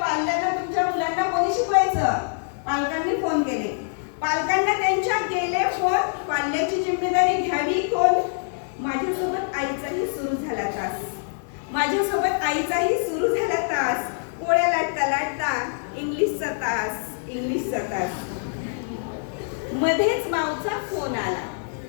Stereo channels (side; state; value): right; silent; digital silence